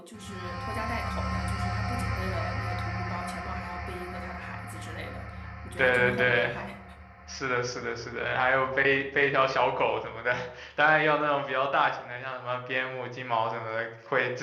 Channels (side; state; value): both; identical; correlation 1.00